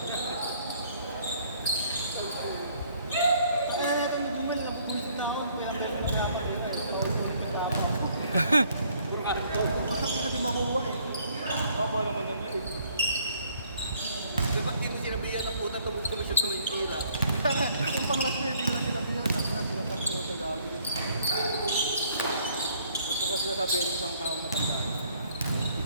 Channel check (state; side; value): inverted; both; correlation -0.63